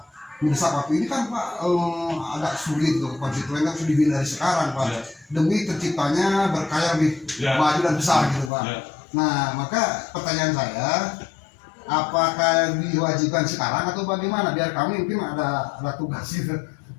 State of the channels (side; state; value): right; drops out; at 8.5 s